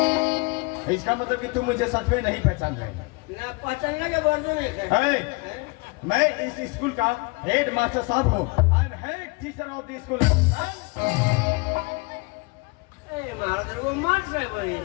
इसका मतलब कि तुम मुझे सच में नहीं पहचान रहे ना पहचानने के वर्जू नहीं है। मैं इस स्कूल का हेड मास्टर साहब हूँ। I am head teacher of the school. महाराज वो मार से भाई।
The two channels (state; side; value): quieter; right; 27.7 dB